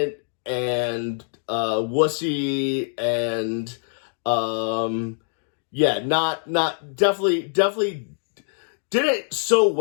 and wussy and definitely did it so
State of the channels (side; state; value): right; silent; digital silence